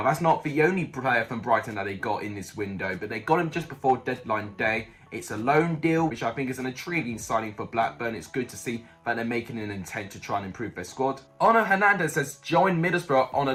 that's not the only player from Brighton that they got in this window, but they got him just before deadline day. It's a loan deal, which I think is an intriguing signing for Blackburn. It's good to see that they're making an intent to try and improve their squad. Ono Hernandez has joined Middlesbrough on a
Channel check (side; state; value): both; identical; correlation 1.00